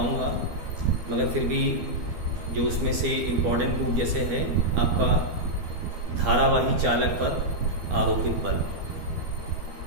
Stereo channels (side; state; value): left; late; 12 ms